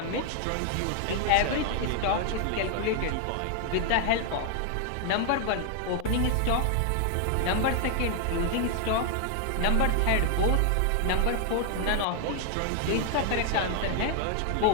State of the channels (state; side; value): different; both; correlation 0.00